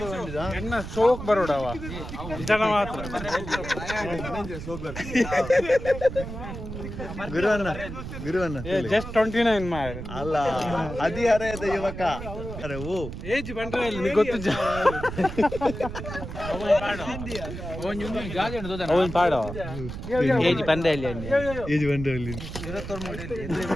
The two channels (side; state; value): right; noise; rumble, 8 dB below the sound